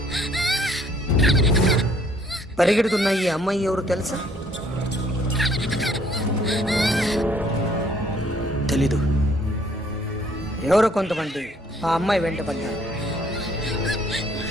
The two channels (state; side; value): normal; both; correlation 0.62